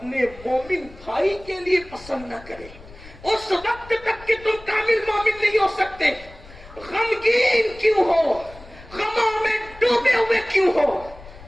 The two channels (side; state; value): left; noise; rumble, 19 dB below the sound